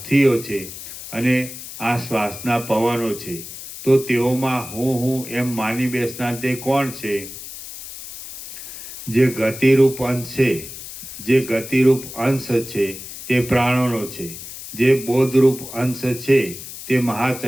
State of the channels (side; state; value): left; noise; hiss, 12 dB below the sound